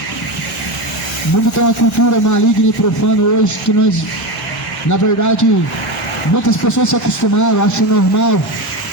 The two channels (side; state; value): both; normal; correlation 0.18